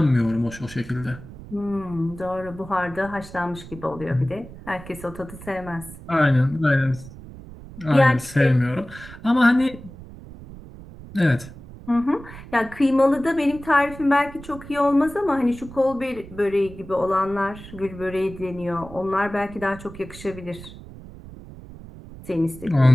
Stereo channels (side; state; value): right; noise; rumble, 16 dB below the sound